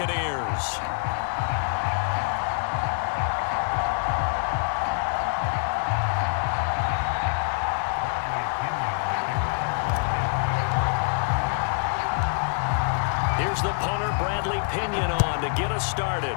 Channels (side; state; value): right; silent; digital silence